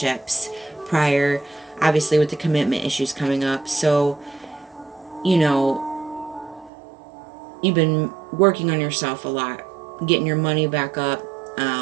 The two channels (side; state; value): left; drops out; at 6.7 s